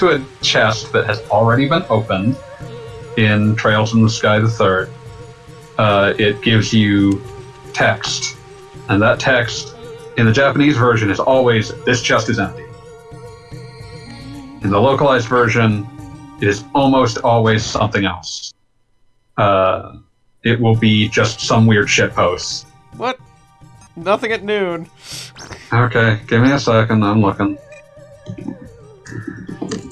a chest that has already been opened in Trails in the Sky the Third, it gives you text. And that text, in the Japanese version, is always, this chest is empty. In the localized version, it is almost always something else. it will be just some weird shitpost. What? Nothing at noon. Okay, give me a second, I'm looking.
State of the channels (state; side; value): identical; both; correlation 1.00